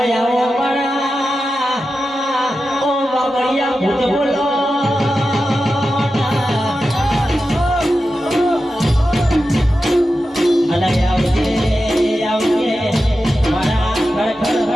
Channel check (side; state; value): both; normal; correlation 0.91